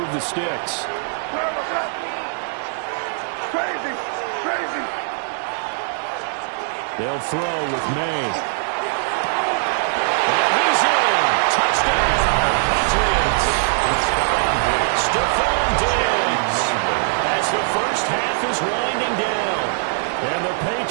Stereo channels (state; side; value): silent; left; digital silence